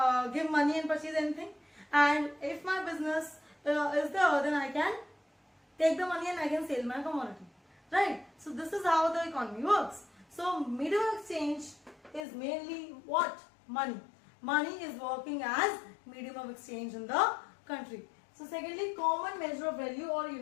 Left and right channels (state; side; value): drops out; right; at 12.2 s